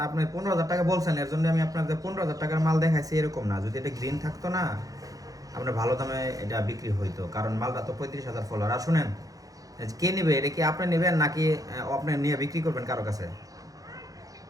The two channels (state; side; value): late; left; 0.17 ms